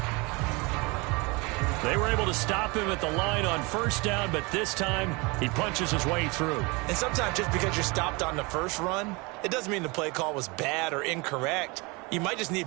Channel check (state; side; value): quieter; left; 26.9 dB